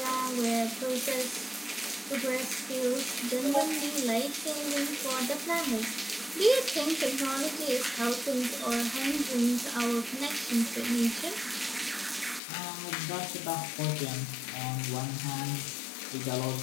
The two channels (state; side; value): drops out; right; at 12.4 s